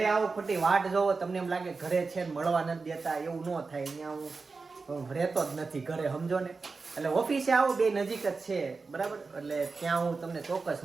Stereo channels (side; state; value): left; quieter; 4.3 dB